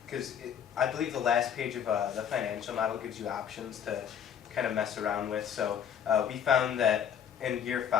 because I believe the last page of the financial model gives you options to kind of mess around with. So we found that in year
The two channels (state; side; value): quieter; right; 8.5 dB